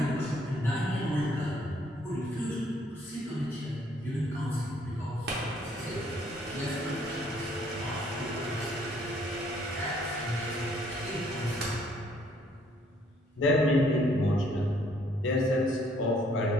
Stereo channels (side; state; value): both; normal; correlation 0.65